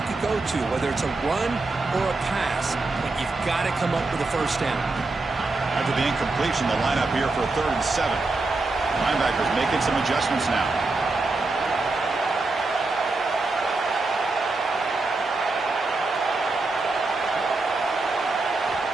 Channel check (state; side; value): quieter; left; 3.4 dB